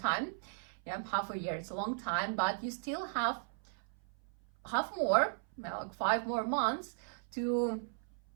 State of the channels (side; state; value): left; silent; 53 dB below the other